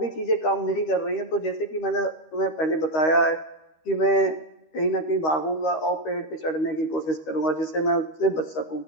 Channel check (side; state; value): right; late; 13 ms